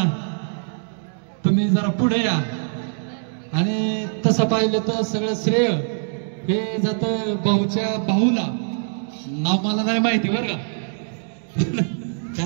तुम्ही जरा पुढे या. आणि तसं पाहिलं तर सगळं श्रेय हे जातं भाऊच्या भाऊला. नाव मला नाही माहिती बरं का.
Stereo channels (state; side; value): silent; left; digital silence